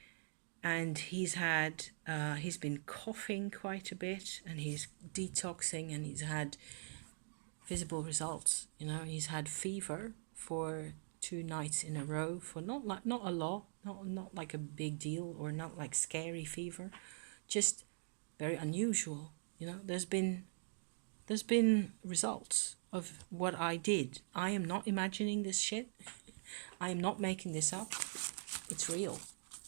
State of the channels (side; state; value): left; silent; digital silence